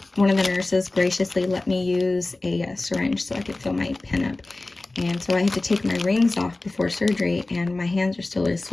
One of the nurses graciously let me use a syringe so I could fill my pen up. And so I had to take my rings off before surgery, and my hands are still really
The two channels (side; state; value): right; quieter; 3.0 dB